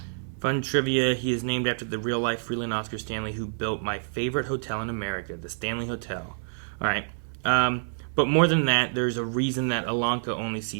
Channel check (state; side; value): silent; left; 60 dB below the other